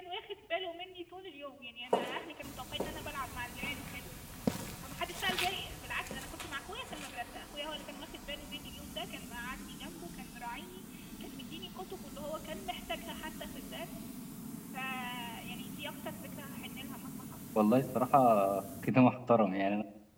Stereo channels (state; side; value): identical; both; correlation 1.00